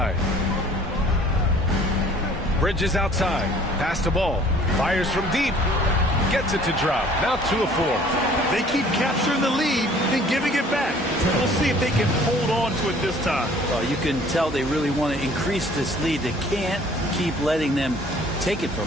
Bridges outside. Pass to Ball. Fires from deep. Gets it to drop. Now 2 of 4. They keep capturing the lead, then giving it back. We'll see if they can hold on to it this time. Well, you can tell they really want to increase this lead. They can't keep letting them take it from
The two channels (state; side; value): normal; both; correlation 0.53